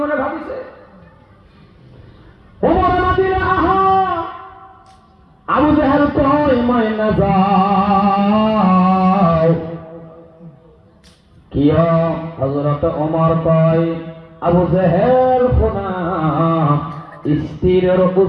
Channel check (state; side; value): identical; both; correlation 1.00